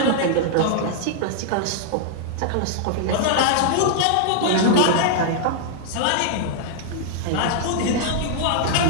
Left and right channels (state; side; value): different; both; correlation -0.01